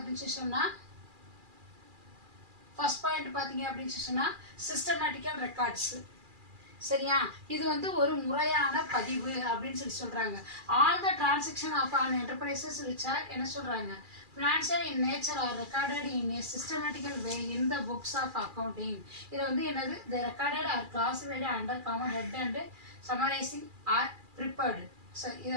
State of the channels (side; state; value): left; late; 2.4 ms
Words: சொன்னால் ஃபர்ஸ்ட் பாயிண்ட் பார்த்தீங்க அப்படின்னு சொன்னால் சிஸ்டமேட்டிக்கல் ரெக்கார்ட்ஸு. சரியா, இது வந்து ஒரு முறையான பதிவு அப்படின்னு சொல்லி சொல்கிறாங்க. All the transaction of an enterprises which are என்ன சொல்கிறாங்க, financial in nature are recorded in a systematical way in the books of accounting. இதில் வந்து என்னது, the recorded are classified under common head and summarizing are prepared. So இது